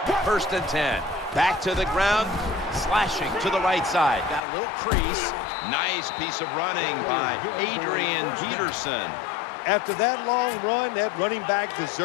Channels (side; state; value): right; drops out; at 4.4 s